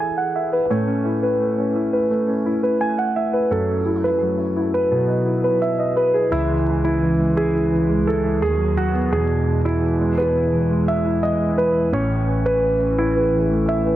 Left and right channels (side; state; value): both; normal; correlation 0.91